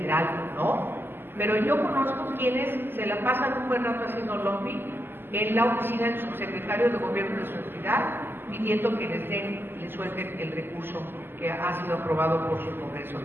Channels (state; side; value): late; left; 0.10 ms